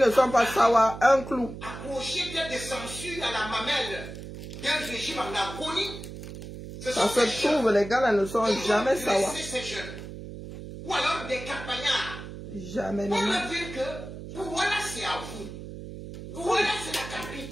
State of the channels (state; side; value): noise; right; hum, 11 dB below the sound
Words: ne sont pas sawa, un clou. accrochés tels des censures à la mamelle d'un régime en agonie. Ce Ça sont se des jeunes trouve, les gars là ne sont qui jamais vont sawa. dresser ces jeunes. Ou alors des campagnards. Jamais, On non. va dire que Douala c'est à vous. Douala c'est la